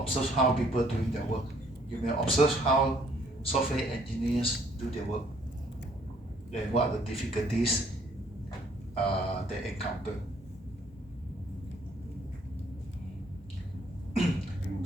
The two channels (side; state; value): both; normal; correlation 0.63